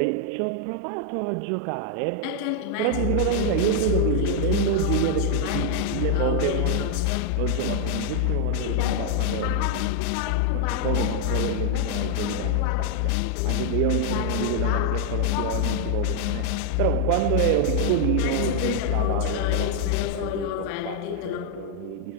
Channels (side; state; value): both; different; correlation 0.00